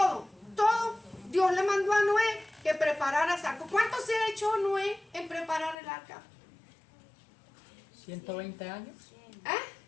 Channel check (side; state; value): right; drops out; at 5.8 s